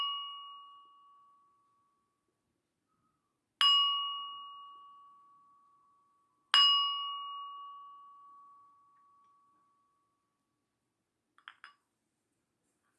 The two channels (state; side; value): identical; both; correlation 1.00